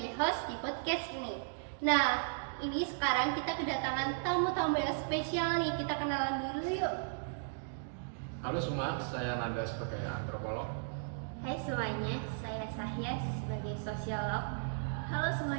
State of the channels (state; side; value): silent; left; digital silence